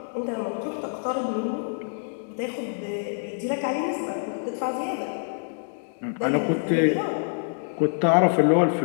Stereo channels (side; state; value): right; silent; digital silence